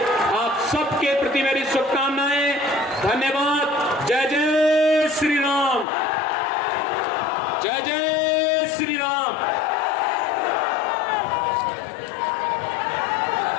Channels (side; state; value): right; drops out; at 5.9 s